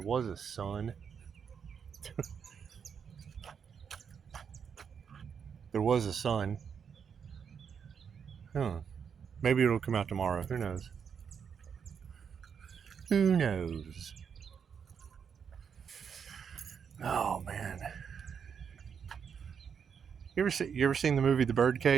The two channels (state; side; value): quieter; left; 7.0 dB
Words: was a sun. There was a sun. Huh. Maybe it'll come out tomorrow. Who knows? Who knows? Oh man. You ever seen the movie The